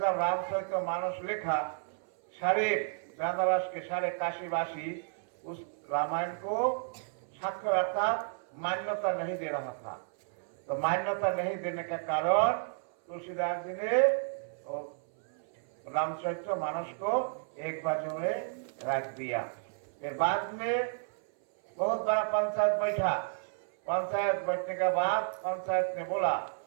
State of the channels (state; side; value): silent; left; 56 dB below the other